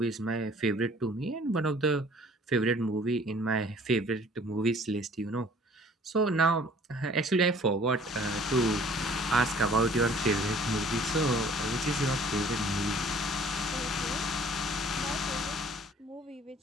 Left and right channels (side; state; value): both; normal; correlation 0.53